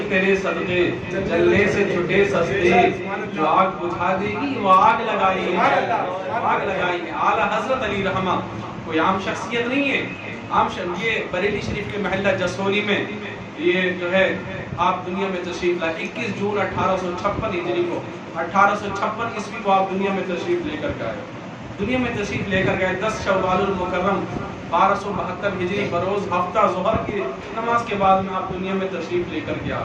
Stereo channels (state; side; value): identical; both; correlation 1.00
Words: تیرے صدقے جلنے سے چھٹے سستے، جو آگ بجھا دے گی وہ آگ لگائیے، آگ لگائیے۔ اعلیٰ حضرت علی رحمہ کوئی عام شخصیت نہیں ہے، یہ بریلی شریف کے محلہ جسولی میں یہ جو ہے آپ دنیا میں تشریف لائے 21 جون 1856 ہجری کو، 1856 عیسوی کو آپ دنیا میں تشریف لے کر گئے، دنیا میں تشریف لے کر گئے 10 شوال المکرم 1272 ہجری بروز ہفتہ ظہر کی نماز کے بعد میں آپ دنیا میں تشریف لے کر کے آ